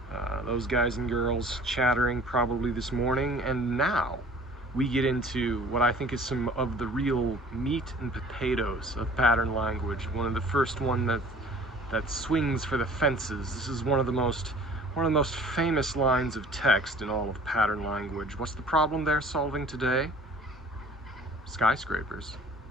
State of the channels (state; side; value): normal; both; correlation 0.49